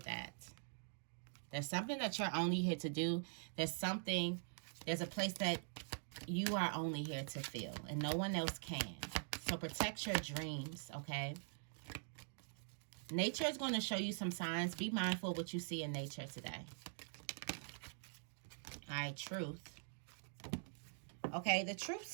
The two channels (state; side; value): silent; left; digital silence